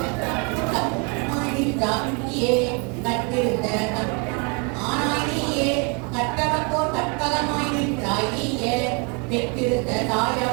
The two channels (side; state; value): left; quieter; 33.8 dB